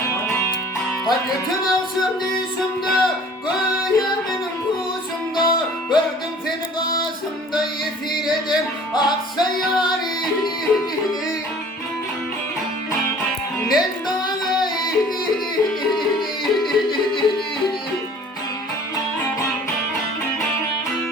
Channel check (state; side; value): normal; both; correlation 0.49